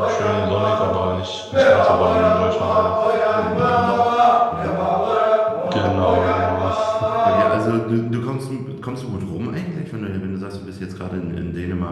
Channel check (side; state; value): both; identical; correlation 1.00